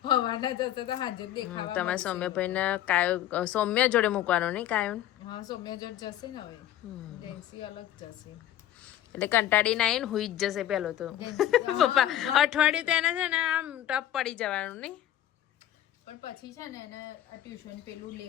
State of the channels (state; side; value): quieter; right; 12.4 dB